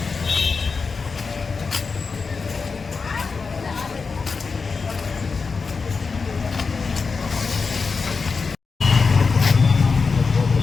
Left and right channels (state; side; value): quieter; right; 4.8 dB